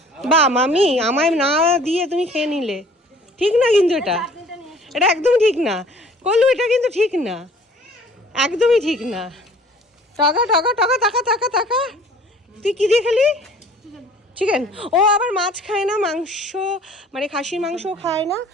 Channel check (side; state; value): both; normal; correlation 0.52